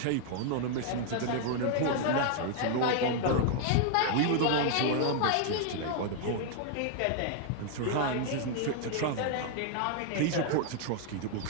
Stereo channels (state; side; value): different; both; correlation 0.00